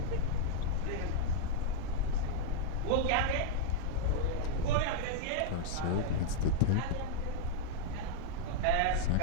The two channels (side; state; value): both; different; correlation -0.01